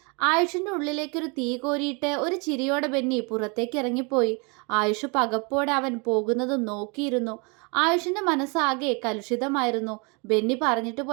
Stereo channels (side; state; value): left; quieter; 31.8 dB